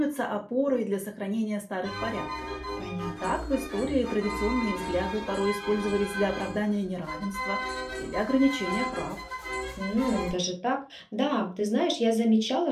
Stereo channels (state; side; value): identical; both; correlation 1.00